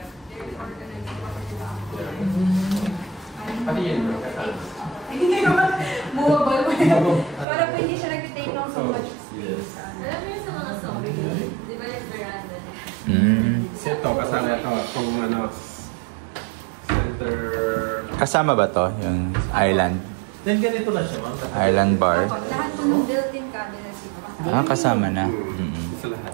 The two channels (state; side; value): drops out; left; at 7.5 s